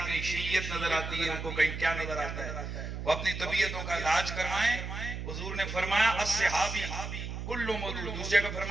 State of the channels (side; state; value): right; noise; hum, 6 dB below the sound